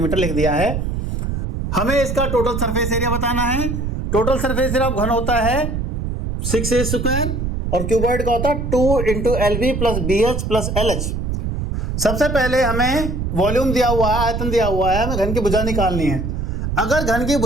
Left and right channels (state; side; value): noise; right; rumble, 2 dB below the sound